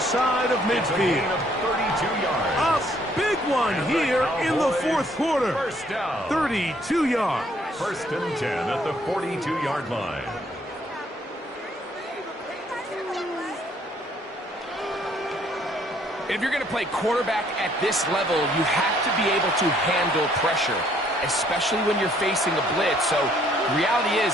of midfield. 32 yards. A big one here in the 4th quarter. 32 yards. 1st and 10 at the 42-yard line. If you're going to play quarterback at this level, you have to be able to handle pressure, especially when you're facing a blitz. So the reality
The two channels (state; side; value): normal; both; correlation 0.65